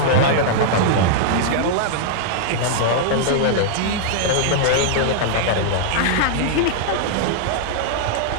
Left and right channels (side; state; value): both; different; correlation -0.01